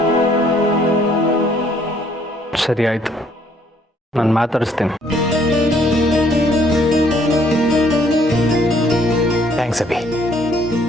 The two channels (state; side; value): normal; both; correlation 0.64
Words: ಸರಿ ಆಯಿತು, ನಾನು ಮಾತಾಡಿಸ್ತೀನಿ. ಥ್ಯಾಂಕ್ಸ್ ಅಭಿ,